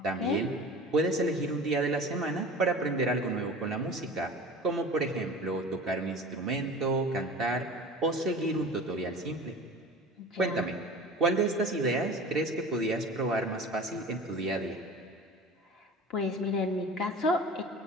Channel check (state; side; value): normal; both; correlation 0.38